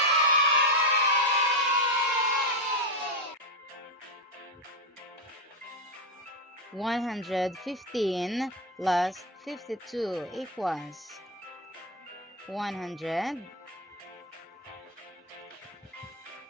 115 plus 52 equals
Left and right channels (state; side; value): normal; both; correlation 0.09